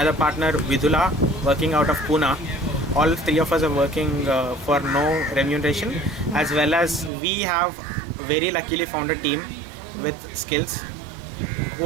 partner Vidula working out of Pune, all three of us are working for no remuneration, as well as we have very luckily found a team with skills who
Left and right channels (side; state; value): left; drops out; at 7.1 s